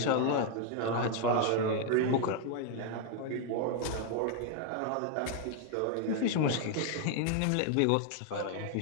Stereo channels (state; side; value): different; both; correlation 0.00